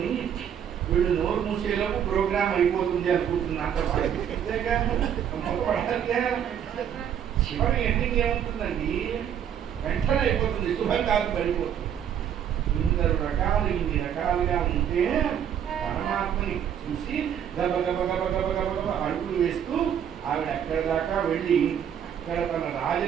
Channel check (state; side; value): quieter; left; 9.1 dB